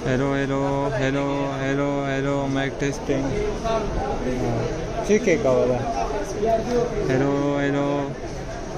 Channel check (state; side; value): identical; both; correlation 1.00